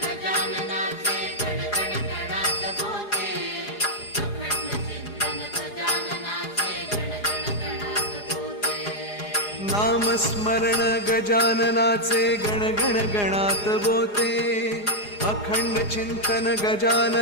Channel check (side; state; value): right; late; 4.8 ms